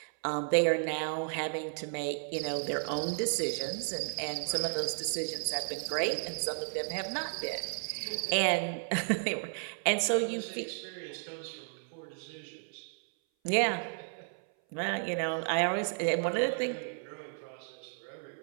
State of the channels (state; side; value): silent; left; 55 dB below the other